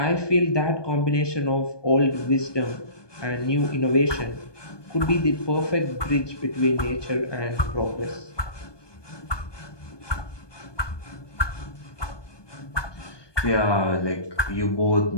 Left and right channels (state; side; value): late; right; 1.2 ms